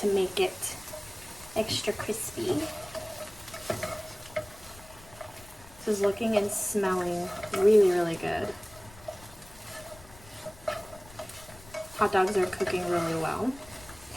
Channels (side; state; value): left; noise; rumble, 21 dB below the sound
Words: to make it extra crispy. This is looking and smelling really, really good. Hot dogs are cooking really well.